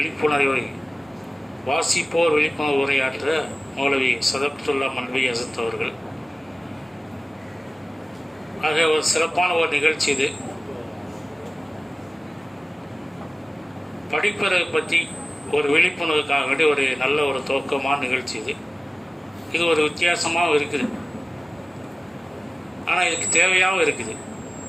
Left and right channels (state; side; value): normal; both; correlation 0.97